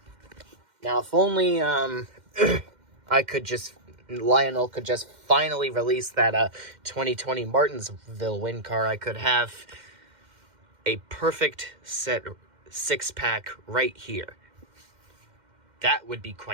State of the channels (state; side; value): late; left; 2.1 ms